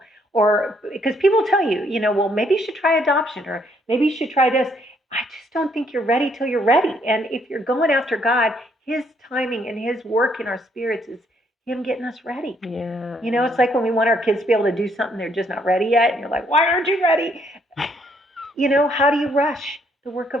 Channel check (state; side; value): normal; both; correlation 0.69